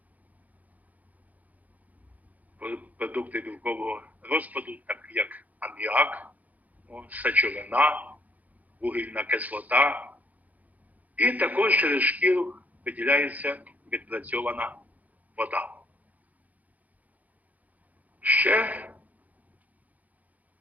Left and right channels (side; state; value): left; late; 0.078 ms